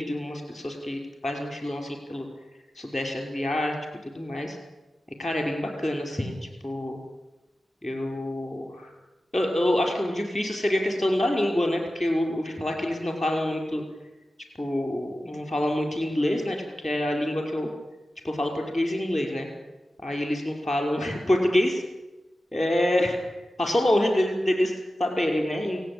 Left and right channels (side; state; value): both; normal; correlation 0.94